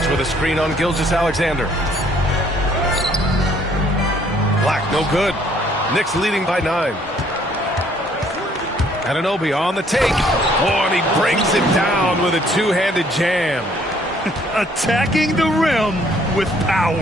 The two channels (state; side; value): normal; both; correlation 0.63